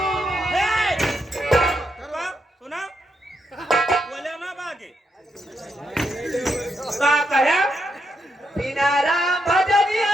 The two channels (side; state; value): both; normal; correlation 0.81